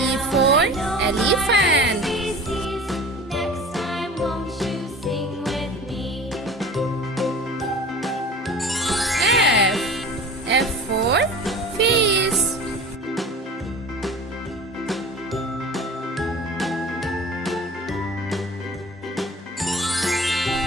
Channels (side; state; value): both; normal; correlation 0.39